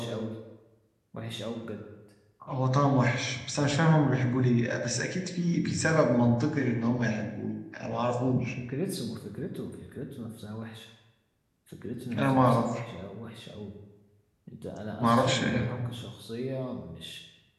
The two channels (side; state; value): both; identical; correlation 1.00